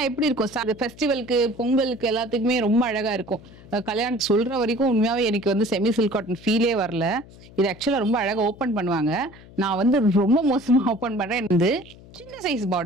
எப்படி இருக்கும் சார்? ஃபெஸ்டிவலுக்கு, பொங்கலுக்கு எல்லாத்துக்குமே ரொம்ப அழகா இருக்கும். கல்யாணத்துக்கு சொல்ற வரைக்கும் உண்மையாவே எனக்கு வந்து செமி சில்க் காட்டன் ஃபீலே வரல. இது ஆக்சுவலா ரொம்ப அழகா ஓப்பன் பண்ணுவாங்க. நான் வந்து ரொம்ப மோசமா ஓப்பன் பண்றேன். வந்து சின்ன சைஸ்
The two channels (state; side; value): noise; left; hum, 21 dB below the sound